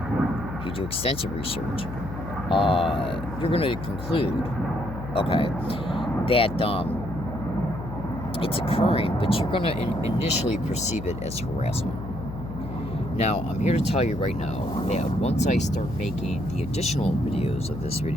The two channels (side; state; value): left; noise; hum, 9 dB below the sound